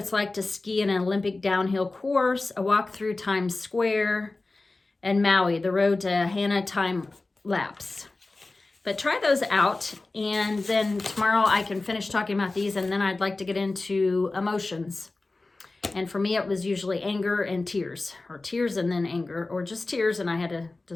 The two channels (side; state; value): right; quieter; 3.3 dB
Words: like to ski in an Olympic downhill course, a walk through Times Square, and Maui, the road to Hana time lapse. But try those out, and then tomorrow I can finish talking about these, and then I'd like to get into emotions. And for me, it was usually anger and tears, or tears and then anger, or just tears, and I had to